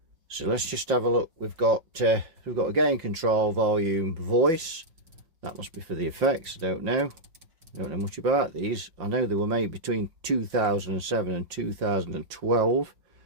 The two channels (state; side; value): late; left; 5.8 ms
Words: So let's just have a look. We've got a gain control, volume, voice. That must be for the effects. I don't know much about these. I know they were made between 2007 and 2012.